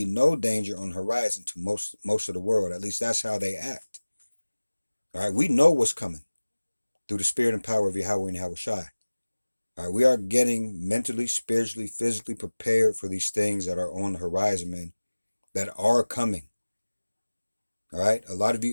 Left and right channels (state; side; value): inverted; both; correlation -1.00